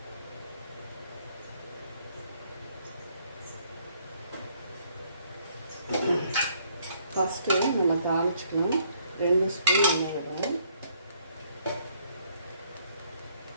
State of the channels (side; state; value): both; inverted; correlation -0.66